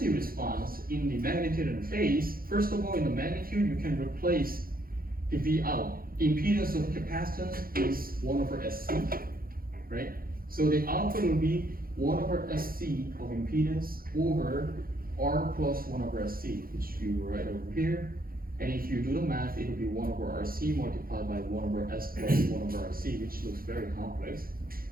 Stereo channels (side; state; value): left; late; 0.42 ms